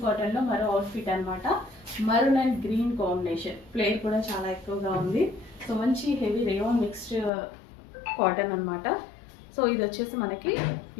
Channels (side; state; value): right; drops out; at 7.3 s